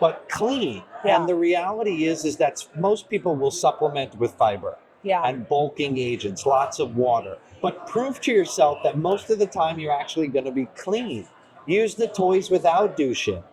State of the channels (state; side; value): identical; both; correlation 1.00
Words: clean? And the reality is that most people will supplement with fiber and bulking agents, lots of water. But prove to yourself that most of the time you're actually going to be clean. Use the toys without douching